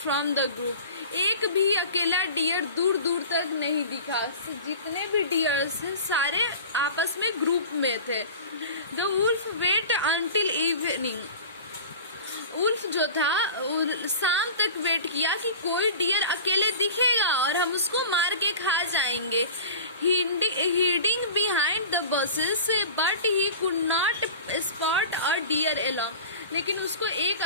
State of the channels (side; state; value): both; inverted; correlation -0.36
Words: from the group. एक भी अकेला डियर दूर दूर तक नहीं दिखा। जितने भी डियर्स थे सारे आपस में ग्रुप में थे। The wolf wait until evening. Wolf जो था शाम तक वेट किया कि कोई डियर अकेले दिखेगा और हम उसको मार के खा जाएंगे। Hiding behind the bushes but he could not spot a deer alone. लेकिन उसको एक